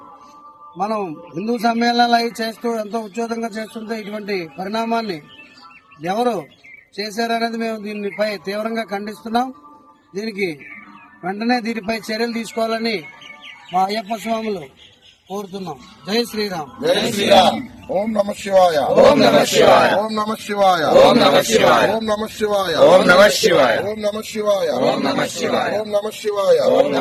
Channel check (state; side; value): identical; both; correlation 1.00